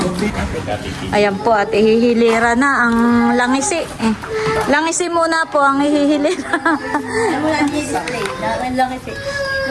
Ayan po, at ihihilira na ang langisi. Langisi muna po ang ihihilira.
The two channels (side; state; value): both; identical; correlation 1.00